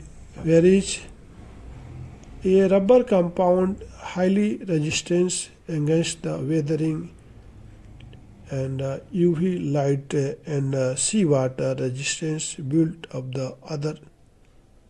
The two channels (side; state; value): both; identical; correlation 1.00